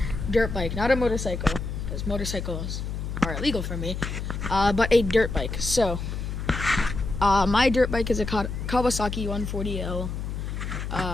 dirt bike, not a motorcycle, because motorcycles are illegal for me, but a dirt bike. So, my dirt bike is a Kawasaki 140L.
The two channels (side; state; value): left; noise; hum, 5 dB below the sound